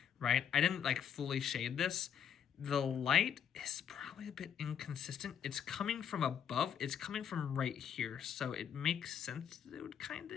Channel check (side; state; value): right; quieter; 8.4 dB